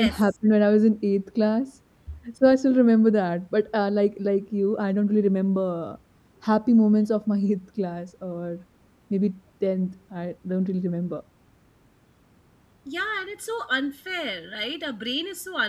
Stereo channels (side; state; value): both; identical; correlation 1.00